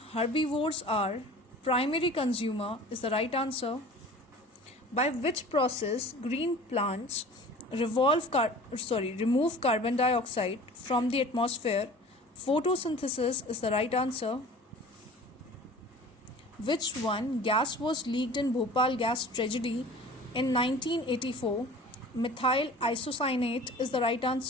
herbivores are primary consumer is the right answer. By which process green plants remove carbon dioxide from the atmosphere? Photosynthesis is the right answer. Which one gas was leaked in Bhopal gas tragedy in 1984? Methyl isocyanate is the right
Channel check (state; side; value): normal; both; correlation 0.43